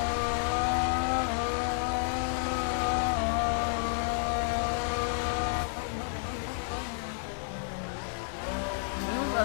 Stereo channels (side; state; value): right; silent; 57 dB below the other